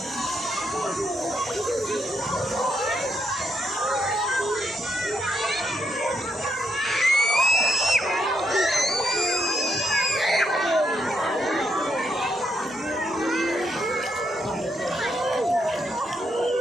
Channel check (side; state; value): both; normal; correlation 0.78